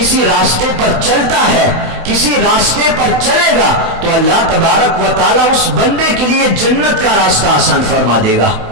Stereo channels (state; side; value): late; left; 28 ms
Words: راستے پر چلتا ہے, کسی راستے پر چلے گا تو اللہ تبارک و تعالیٰ اس بندے کے لیے جنت کا راستہ آسان فرما دے گا.